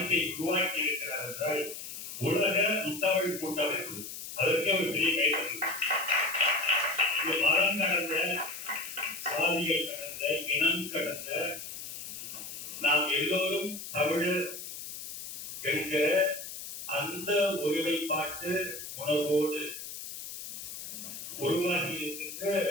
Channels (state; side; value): noise; left; hiss, 9 dB below the sound